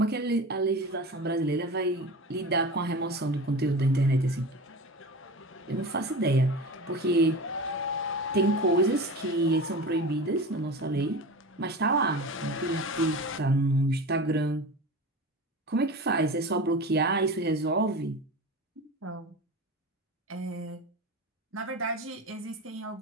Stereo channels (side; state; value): both; normal; correlation 0.31